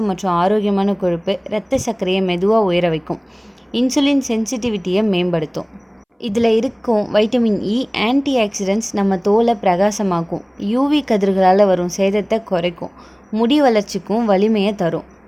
மற்றும் ஆரோக்கியமான கொழுப்பு இரத்த சர்க்கரையை மெதுவாக உயர வைக்கும், இன்சுலின் சென்சிட்டிவிட்டியை மேம்படுத்தும். இதில் இருக்கும் வைட்டமின் இ ஆன்டி ஆக்சிடென்ட்ஸ் நம்ம தோலை பிரகாசமாக்கும், யூவி கதிர்களால் வரும் சேதத்தை குறைக்கும், முடி வளர்ச்சிக்கும் வலிமையை தரும்.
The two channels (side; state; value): both; identical; correlation 1.00